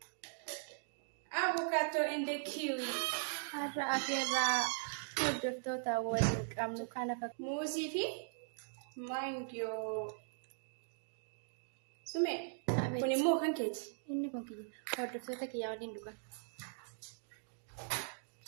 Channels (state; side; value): silent; left; digital silence